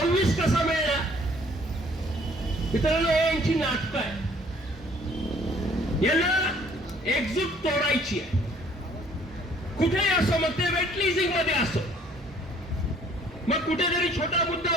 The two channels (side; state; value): both; normal; correlation 0.59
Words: कसा मिळणार? मित्रांनो, हे यांची नाटकं आहे. यांना एकजूट तोडायची आहे. कुठेही असो, मग ते वेट लीजिंग मध्ये असो, मग कुठेतरी छोटा मुद्दा